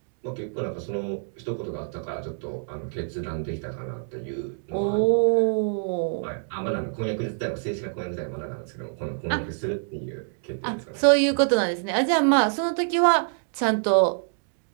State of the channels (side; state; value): left; silent; digital silence